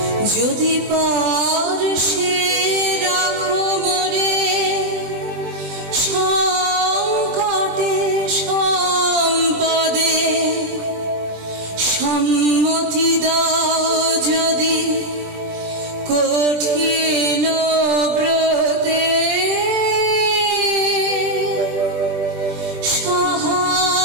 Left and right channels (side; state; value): left; late; 20 ms